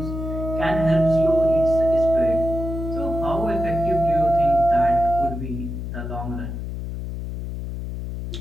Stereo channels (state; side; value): noise; left; hum, 6 dB below the sound